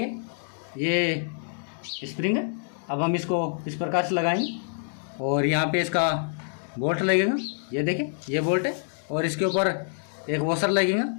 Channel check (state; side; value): silent; right; digital silence